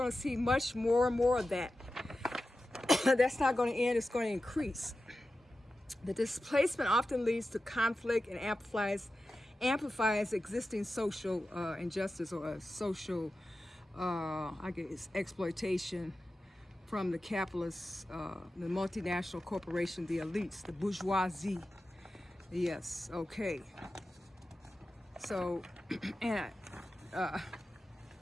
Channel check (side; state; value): both; normal; correlation 0.93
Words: to see much more and more of that. That's not going to end, it's going to increase. The displacement often leads to conflict and amplifies existing social injustice or social, exploitation from the capitalists, the multinational corporation, the elites, the bourgeoisie. Yes, okay. So, and